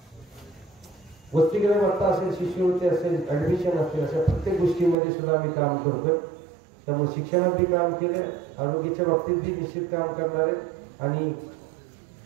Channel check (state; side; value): drops out; left; at 5.0 s